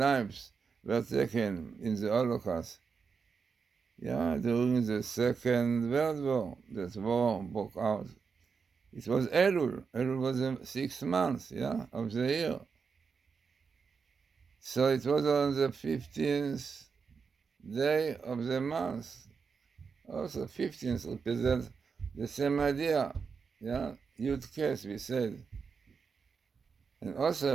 were taken in the Holocaust. During the Second World War, that war broke out. It was Elul. Elul was the 6th month, of the year. So it was on the 15th day of the month. Also, 15th represents the same idea, Yud Kes, we said. And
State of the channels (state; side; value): quieter; left; 5.5 dB